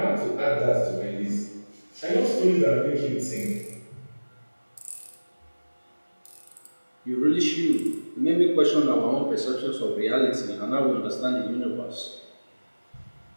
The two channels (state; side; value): inverted; both; correlation -1.00